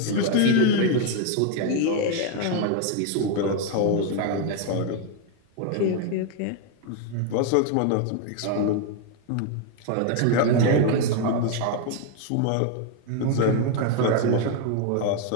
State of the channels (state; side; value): different; both; correlation 0.01